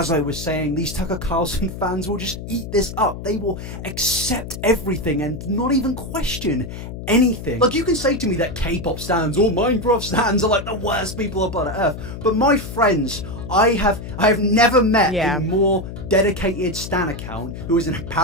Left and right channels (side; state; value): left; noise; hum, 9 dB below the sound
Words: I was saying, these Tucker Carlson fans will just eat this up. They will accept everything and not even question anything. Like, you can say to me that K-pop stans or Minecraft stans are like the worst people on planet Earth, but my friends, I have never met a more dedicated stan account who is in a